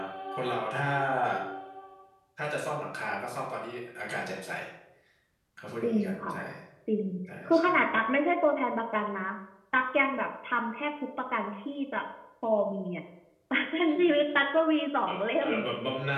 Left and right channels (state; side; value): identical; both; correlation 1.00